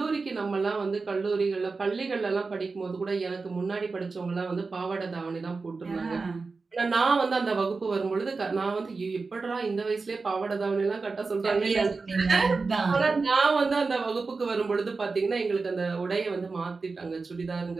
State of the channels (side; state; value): left; quieter; 4.2 dB